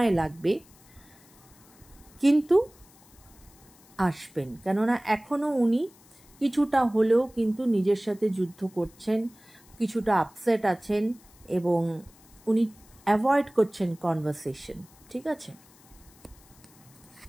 লাগবে, কিন্তু আসবেন। কেননা এখনও উনি কিছুটা হলেও কিন্তু নিজের সাথে যুদ্ধ করছেন, কিছুটা আপসেট আছেন, এবং উনি অ্যাভয়েড করছেন কনভারসেশন, ঠিক আছে?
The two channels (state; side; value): noise; left; hiss, 26 dB below the sound